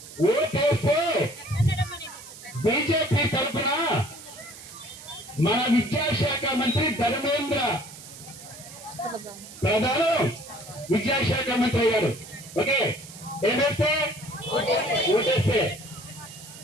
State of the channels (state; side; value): noise; right; hiss, 16 dB below the sound